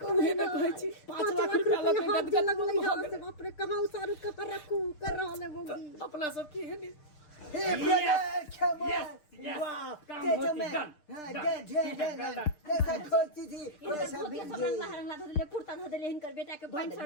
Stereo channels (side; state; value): right; late; 6.6 ms